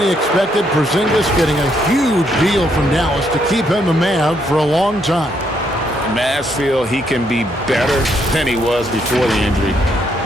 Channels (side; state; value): both; normal; correlation 0.74